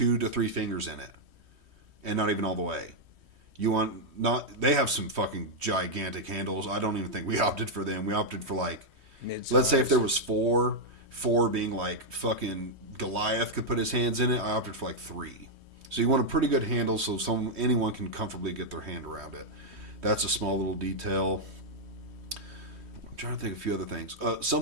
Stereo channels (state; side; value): late; left; 3.2 ms